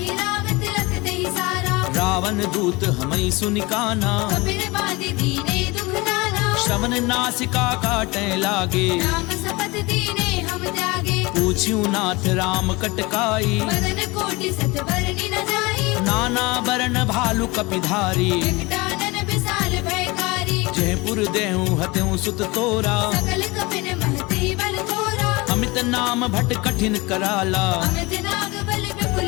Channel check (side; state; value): right; quieter; 24.1 dB